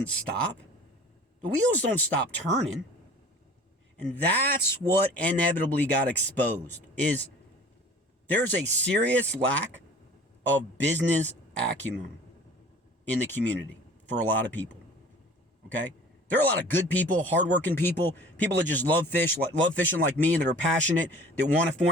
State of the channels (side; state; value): both; normal; correlation 0.46